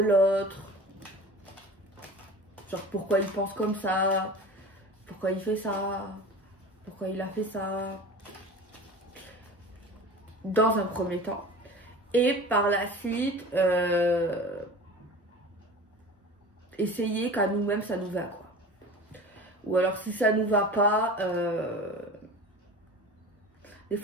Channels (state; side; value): normal; both; correlation 0.37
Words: l'autre. Genre pourquoi il pense comme ça, pourquoi il fait ça, pourquoi il a fait ça. Dans un premier temps. Et par la suite, essayer qu'à nous-mêmes ça nous va, quoi. Ou alors si ça nous va pas, des